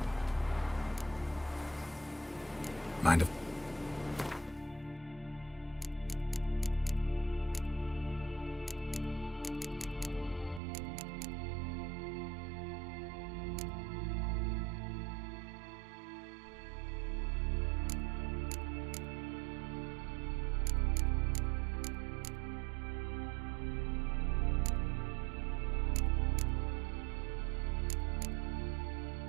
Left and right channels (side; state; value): left; drops out; at 10.6 s